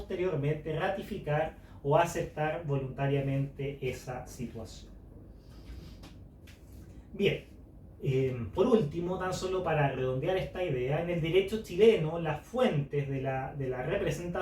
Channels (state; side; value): identical; both; correlation 1.00